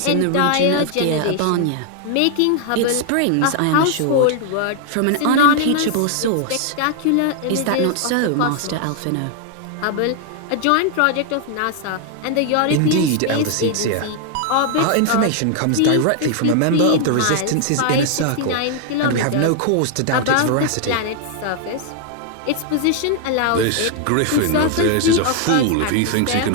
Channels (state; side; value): different; both; correlation 0.00